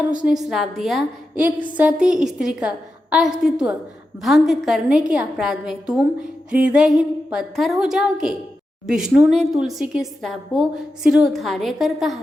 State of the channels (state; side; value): normal; both; correlation 0.89